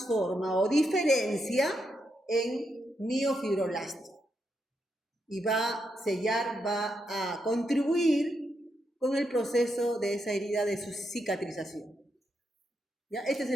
o diferencia en miofibroblasto. Y va a sellar, va a contribuir con el proceso de esa herida de su cicatrización. ¿Ya? Este es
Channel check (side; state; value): both; normal; correlation 0.82